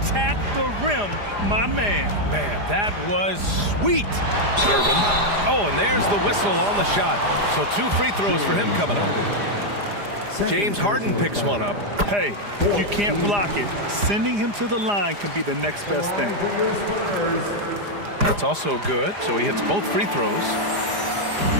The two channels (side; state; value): left; late; 4.9 ms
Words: the rim, my man. Man, that was sweet. Gervin. Oh, and there's the whistle on the shot. So 2 free throws for him coming up. James Harden picks one up. Hey, if you can't block it, sending him to the line can be the next best thing. That's also good, so he hits both free throws.